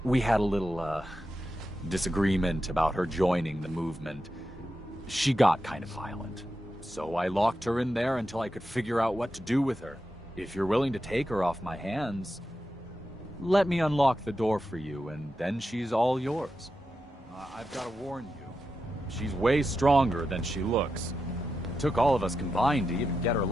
we had a little, disagreement about her joining the movement. She got kind of violent. So I locked her in there until I could figure out what to do with her. If you're willing to take her off my hands, let me unlock the door for you, and then she's all yours. I've got to warn you. She's way stronger than she looks. It took all of us combined to even get her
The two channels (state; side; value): normal; both; correlation 0.88